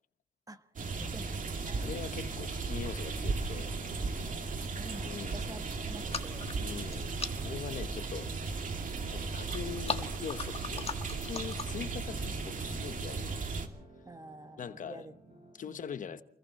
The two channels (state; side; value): normal; both; correlation 0.53